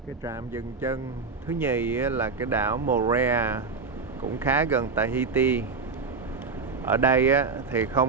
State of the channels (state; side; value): quieter; left; 4.6 dB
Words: Cái trạm dừng chân thứ nhì là cái đảo Moorea, cũng khá gần Tahiti. Ở đây thì